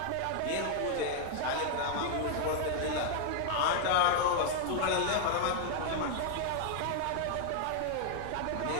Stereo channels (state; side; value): different; both; correlation 0.00